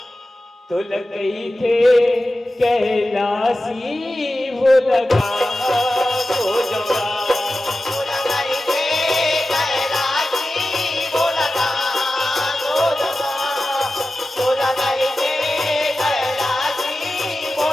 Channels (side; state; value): both; normal; correlation 0.94